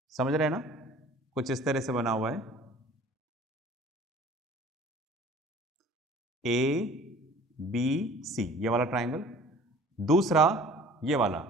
समझ रहे हैं ना, कुछ इस तरह से बना हुआ है। ABC, ये वाला ट्राइंगल। दूसरा ये वाला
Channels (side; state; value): both; normal; correlation 0.48